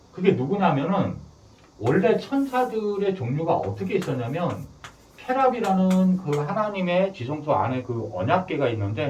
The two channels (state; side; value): identical; both; correlation 1.00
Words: 그게 누구냐면은 원래 천사들의 종류가 어떻게 있었냐면 케랍이라는 그 하나님의 지성소 안에 그 언약궤가